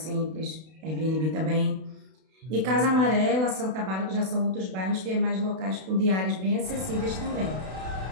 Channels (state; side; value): late; left; 32 ms